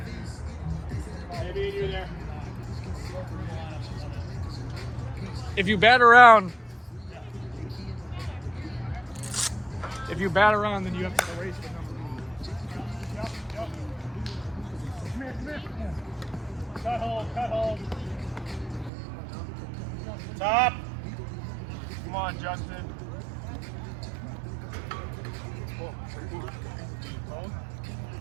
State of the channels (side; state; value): left; drops out; at 18.9 s